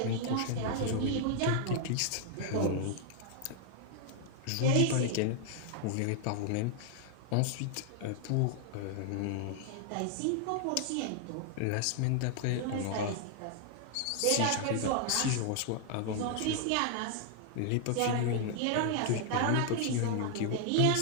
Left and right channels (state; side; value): different; both; correlation 0.00